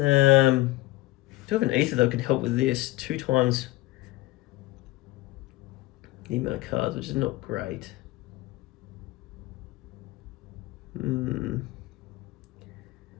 have an ether that can help with this 2 times the amount of cards, which is not great.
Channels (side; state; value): right; quieter; 18.5 dB